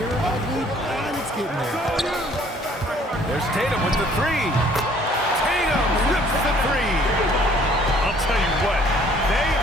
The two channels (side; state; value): both; normal; correlation 0.58